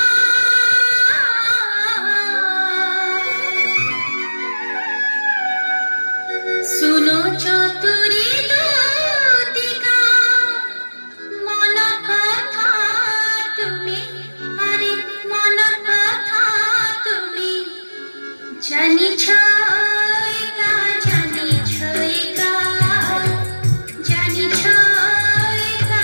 सुनो चतुरी दूतिका मन कथा तुमी अरे मन कथा तुमी जानी छयका जानी छयका जानी छयका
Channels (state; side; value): inverted; both; correlation -1.00